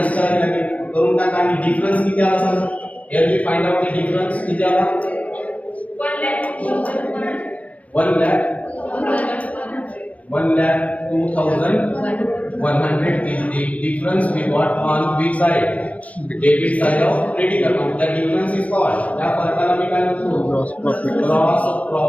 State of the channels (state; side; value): late; right; 0.067 ms